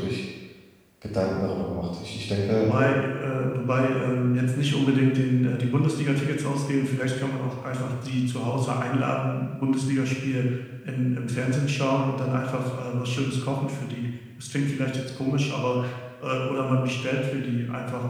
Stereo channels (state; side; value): identical; both; correlation 1.00